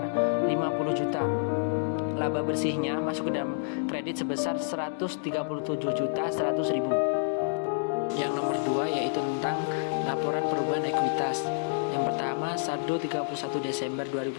50 juta. Laba bersihnya masuk ke dalam kredit sebesar 137.100.000. Yang nomor 2 yaitu tentang laporan perubahan ekuitas. Yang pertama, saldo 31 Desember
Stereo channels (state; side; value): silent; right; digital silence